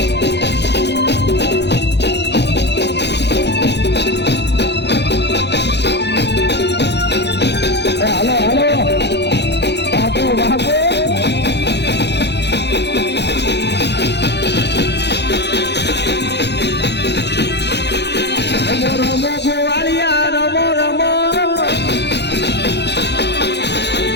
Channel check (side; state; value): right; late; 0.50 ms